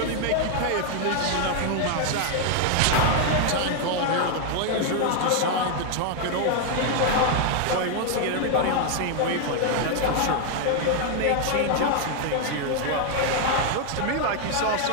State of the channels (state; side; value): different; both; correlation 0.00